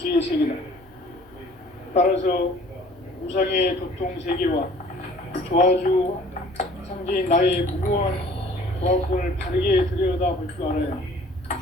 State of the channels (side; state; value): both; normal; correlation 0.52